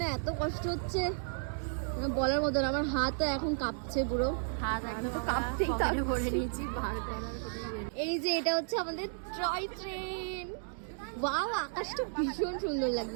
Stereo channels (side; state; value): left; silent; digital silence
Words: এত কষ্ট হচ্ছে বলার মতো না। আমার হাতও এখন কাঁপছে, পুরো হাত একদম কাঁপতেই ভরে নিয়েছি। এই যে এটা হচ্ছে আমাদের টয় ট্রেন। ওয়াও, আকাশটা ভীষণ সুন্দর